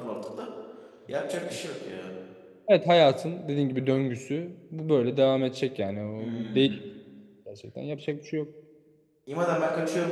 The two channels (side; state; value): both; identical; correlation 1.00